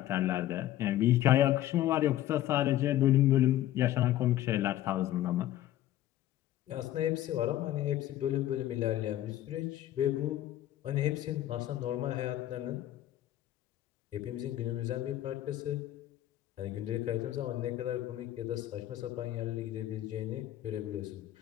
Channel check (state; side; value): quieter; right; 13.4 dB